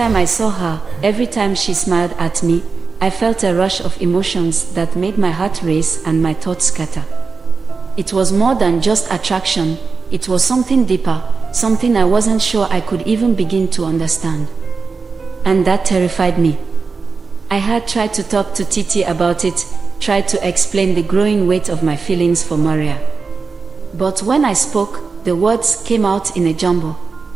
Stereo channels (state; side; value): quieter; left; 4.7 dB